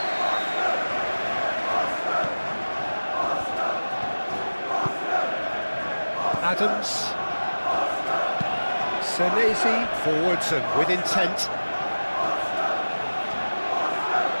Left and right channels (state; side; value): inverted; both; correlation -1.00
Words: Adams. Senesi forwards and with intent.